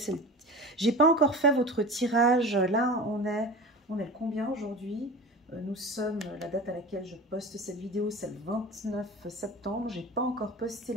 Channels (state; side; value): normal; both; correlation 0.34